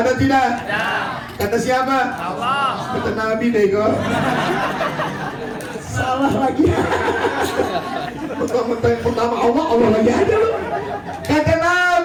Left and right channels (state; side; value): identical; both; correlation 1.00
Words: tidak? Kata siapa? Allah. Kata Nabi deh kok. Salah lagi. Pertama Allah, Allah lagi ada loh. Kata